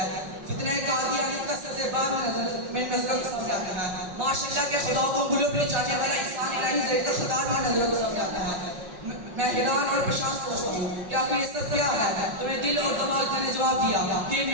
فتنہ قادیانیت کا سزیباب میں نظر سامنے آتا ہے, ماشاءاللہ کے خدا کو گلوں پہ جانے والا انسان الہی زید خدا میں نظر سامنے آتا ہے. میں حیران اور پریشان سوچتا ہوں کہ آخر یہ سب کیا ہے؟ تمہیں دل اور دماغ نے جواب دیا کہ یہ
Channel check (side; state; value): left; late; 5.5 ms